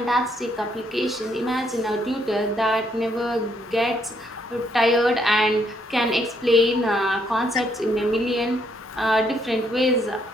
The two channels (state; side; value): normal; both; correlation 0.72